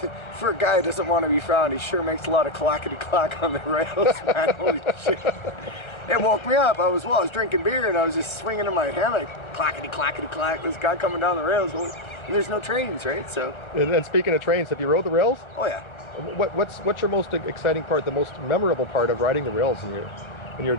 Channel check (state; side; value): late; right; 1.3 ms